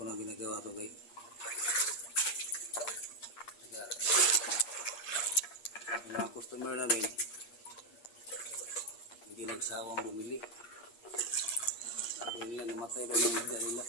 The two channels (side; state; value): right; late; 8.5 ms